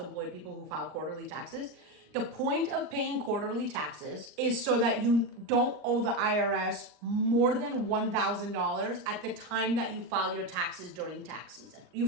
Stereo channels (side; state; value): left; late; 39 ms